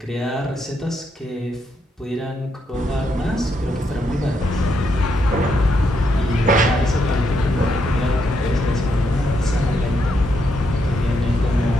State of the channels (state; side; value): normal; both; correlation 0.78